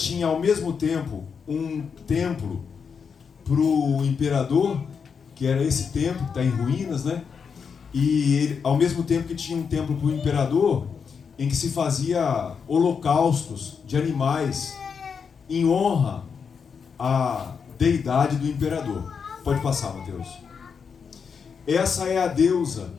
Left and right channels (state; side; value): quieter; right; 6.2 dB